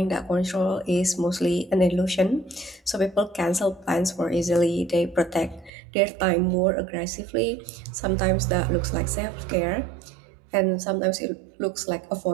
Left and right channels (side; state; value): left; drops out; at 5.7 s